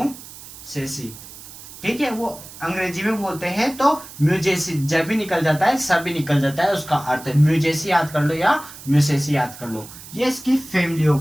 ठीक है, वो अंग्रेजी में बोलते हैं तो म्यूजेसी, जब भी निकल जाता है सब भी निकल जाता है, उसका अर्थ है म्यूजेसी याद कर लो या म्यूसेसी याद कर लो। ये इसकी फैमिली हो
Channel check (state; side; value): noise; right; hiss, 16 dB below the sound